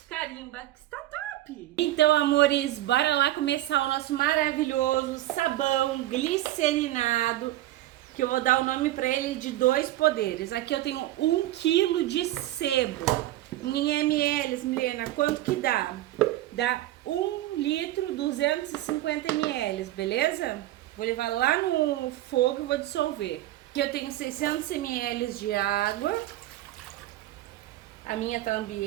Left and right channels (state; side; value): quieter; left; 15.2 dB